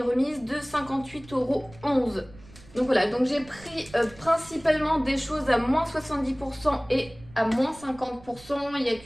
remise de 58,11 €. Donc voilà, donc j'ai pris principalement des choses à moins 70% et à moins 50%. Il n'y a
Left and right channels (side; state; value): right; noise; rumble, 22 dB below the sound